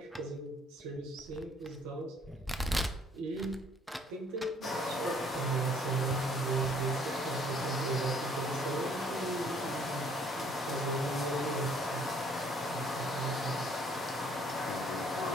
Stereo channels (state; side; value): normal; both; correlation 0.61